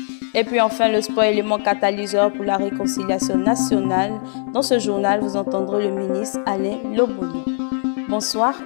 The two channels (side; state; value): right; silent; digital silence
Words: Et puis enfin, le sport élément catalyseur pour la réconciliation nationale. Dans ce journal, vous entendrez le ministre Alain Loboni. Bonsoir